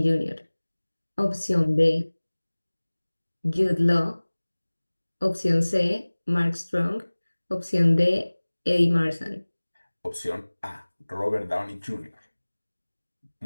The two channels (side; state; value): both; inverted; correlation -1.00